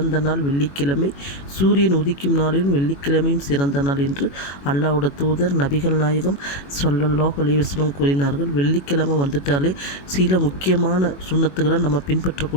நாள் வெள்ளிக்கிழமை, சூரியன் உதிக்கும் நாளிலும் வெள்ளிக்கிழமையும் சிறந்த நாள் என்று அல்லாஹ்வுடைய தூதர் நபிகள் நாயகம் ஸல்லல்லாஹு அலைஹி வஸல்லம் கூறினார்கள். வெள்ளிக்கிழமை வந்துட்டாலே சில முக்கியமான சுன்னத்துகளை நம்ம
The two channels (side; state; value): right; late; 21 ms